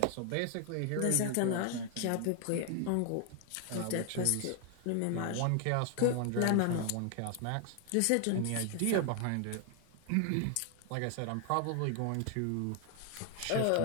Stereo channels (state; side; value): different; both; correlation 0.00